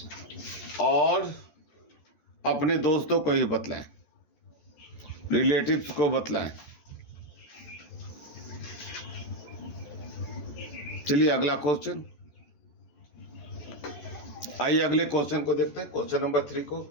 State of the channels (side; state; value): right; late; 14 ms